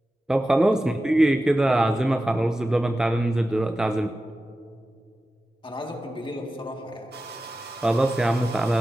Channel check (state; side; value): normal; both; correlation 0.93